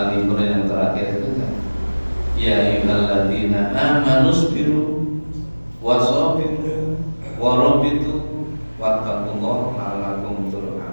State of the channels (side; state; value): both; inverted; correlation -1.00